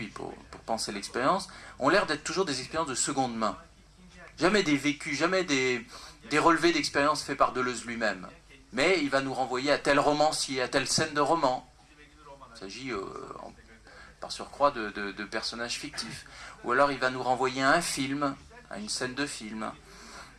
pour penser l'expérience, ont l'air d'être toujours des expériences de seconde main. Jamais des vécus, jamais des relevés d'expérience faits par Deleuze lui-même. Mais il va nous renvoyer à tel romancier, à telle scène de roman. Il s'agit par surcroît de personnages fictifs. Ou alors il va nous renvoyer à un film, à une scène de film,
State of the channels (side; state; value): both; identical; correlation 1.00